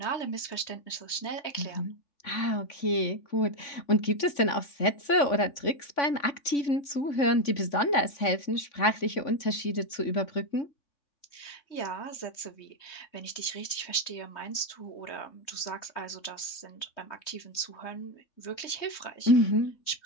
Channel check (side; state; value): right; late; 3.5 ms